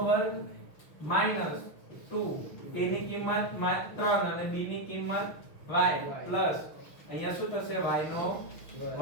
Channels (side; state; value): right; late; 6.3 ms